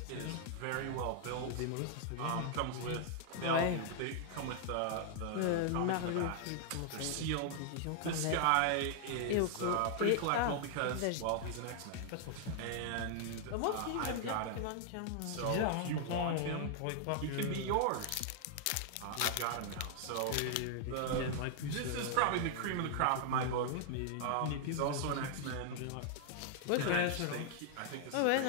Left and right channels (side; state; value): both; different; correlation 0.00